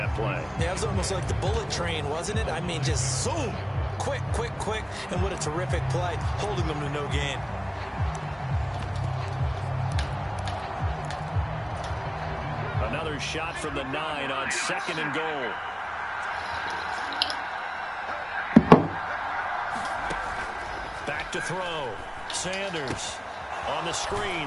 play. Yeah, it was almost like the bullet train, wasn't it? I mean, just zoom. Quick, quick, quick. And what a terrific play, holding them to no gain. Another shot from the 9 on 2nd and goal. Back to throw. Sanders on the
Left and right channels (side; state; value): both; identical; correlation 1.00